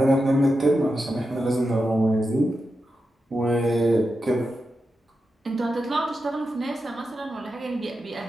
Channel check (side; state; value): both; normal; correlation 0.89